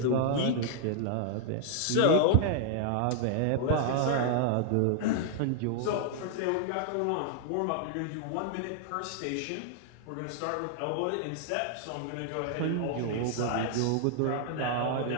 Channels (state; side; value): different; both; correlation -0.01